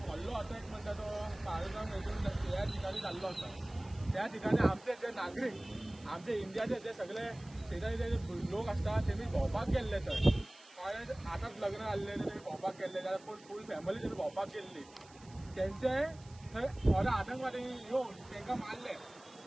व्हडलो अटॅक म्हणटा तो पहलगाम हेतून ह्या ठिकाणी जाल्लो आसा। त्या ठिकाणी आमचे जे नागरिक आमचे इंडियाचे जे सगळे शेजारी जे लोक असतात तेमी भोंवपाक गेल्ले थंय आतांच लग्न जाल्ले तेमी भोंवपाक गेल्ले जाल्यार पूण फूल फॅमिली तेमी भोंवपाक गेल्ली तेंचे थंय थोडे आतंकवादी येवन तांकां मारले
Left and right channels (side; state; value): right; noise; hiss, 24 dB below the sound